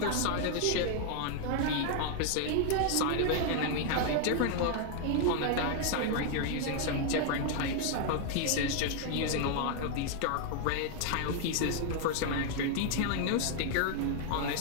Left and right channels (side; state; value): both; different; correlation 0.00